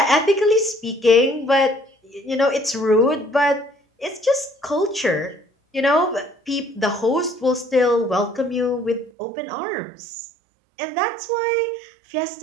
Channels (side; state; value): left; drops out; at 9.1 s